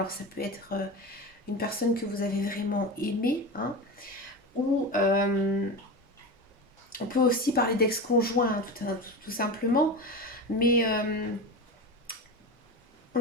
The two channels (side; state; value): both; normal; correlation 0.25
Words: ça peut être une personne que vous avez vraiment aimée, hein, ou on peut aussi parler d'ex-conjoint, hein, tout simplement, mais